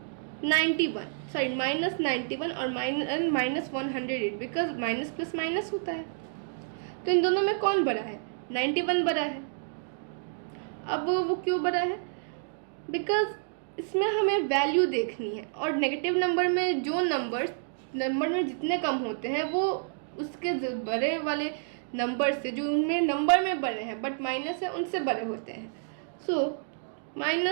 91, सॉरी -91 और -108 बिकॉज माइनस प्लस माइनस होता है। तो इन दोनों में कौन बड़ा है, 91 बड़ा है। अब वो क्यों बड़ा है, बिकॉज इसमें हमें वैल्यू देखनी है और नेगेटिव नंबर में जो नंबर में जितने कम होते हैं वो उसके बड़े वाले नंबर से जो उनमें नंबर में बड़े हैं बट माइनस है उनसे बड़े होते हैं। सो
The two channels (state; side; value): silent; left; digital silence